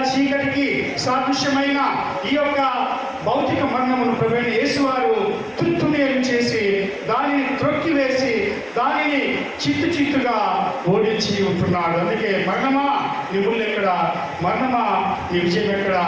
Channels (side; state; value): both; identical; correlation 1.00